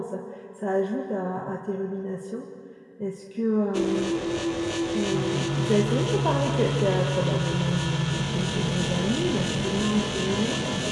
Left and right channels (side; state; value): both; identical; correlation 1.00